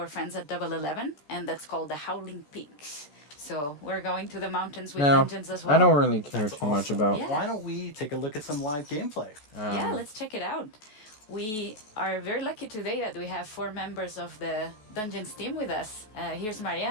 friends at Double 11, and that's called the Howling Peaks. So we're going to the mountains with Now, dungeons as well. I don't really care too much about. Yeah. Why don't we take a look at some live gameplay? Yeah, let's check it out. We are very lucky today that we have 4 members of the Dungeons team with us. Here's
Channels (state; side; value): late; right; 14 ms